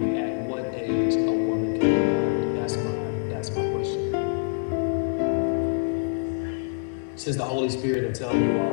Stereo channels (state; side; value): silent; right; digital silence